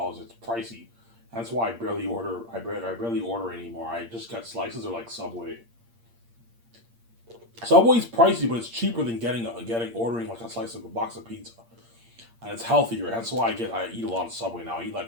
It's pricey. That's why I barely order. I barely order anymore. I just get slices or like Subway. Subway's pricey, but it's cheaper than getting ordering like a slice of a box of pizza, and it's healthier. That's why I eat a lot of Subway now. I eat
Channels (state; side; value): late; left; 8.6 ms